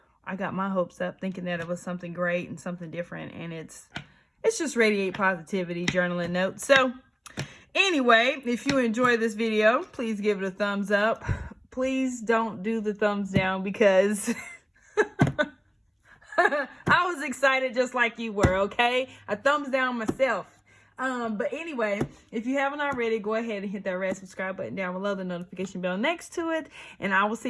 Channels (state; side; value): identical; both; correlation 1.00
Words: I got my hopes up thinking that it was something great and something different, and it's just Radiate Positivity Journaling Notes. So anyway, if you enjoy this video, please give it a thumbs up. Please don't do the thumbs down, because I was excited just like you were, okay? A thumbs down myself. But anyway, if you haven't already, go ahead and hit that red subscribe button down below, the notification bell next to it, and I will